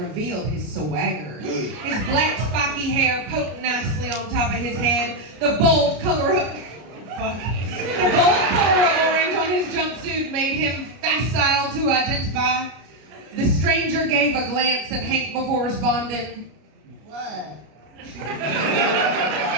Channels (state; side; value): late; left; 33 ms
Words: his swagger. His black spiky hair poked nicely on top of his head. The bold color of orange on his jumpsuit made him facile to identify. The stranger gave a glance at Hank before responding, "What?"